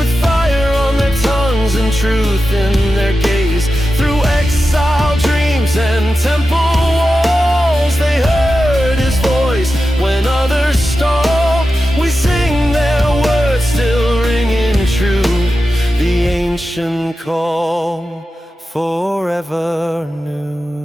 fire on their tongues and truth in their gaze. Through exile, dreams, and temple walls, they heard his voice when others stalled. We sing their words still ringing true, the ancient call forever new.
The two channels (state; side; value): normal; both; correlation 0.92